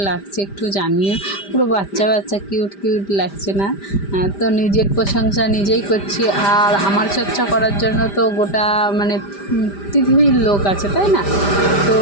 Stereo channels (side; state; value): right; late; 5.0 ms